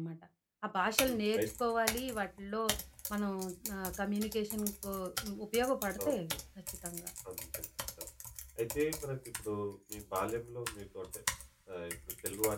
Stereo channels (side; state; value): both; identical; correlation 1.00